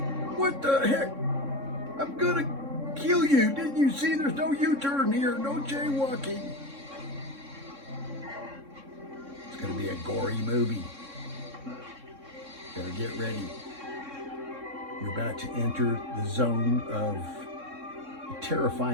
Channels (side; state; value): left; late; 3.6 ms